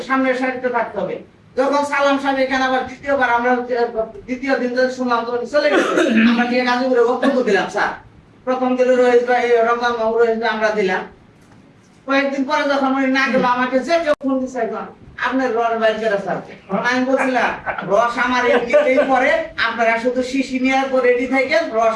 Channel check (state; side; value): identical; both; correlation 1.00